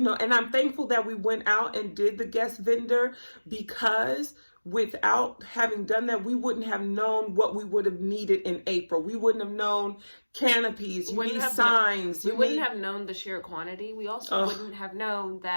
I'm thankful that we went out and did the guest vendor, because without having done that, we wouldn't have known what we would have needed in April. We wouldn't have known canopies, you need signs. We wouldn't have known the sheer quantity. We also wouldn't have known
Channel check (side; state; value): both; inverted; correlation -1.00